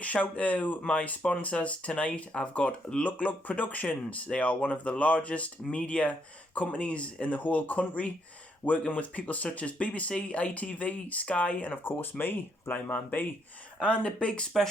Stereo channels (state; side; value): normal; both; correlation 0.74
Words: shout to my sponsors tonight. I've got LUKLUKproductions. They are one of the largest media companies in the whole country, working with people such as BBC, ITV, Sky, and of course me, Blind Man B. And a big